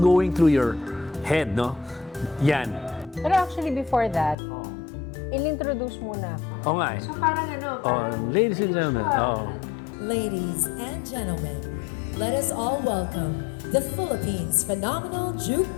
going through your head, no? Yan. Pero actually before that, in-introduce muna ako. Oo nga eh. So parang ano, Oh, ladies and gentlemen. Oh. Ladies and gentlemen, let us all welcome the Philippines' phenomenal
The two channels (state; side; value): drops out; right; at 4.4 s